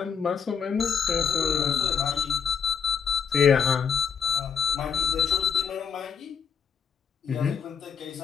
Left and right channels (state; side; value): quieter; right; 6.9 dB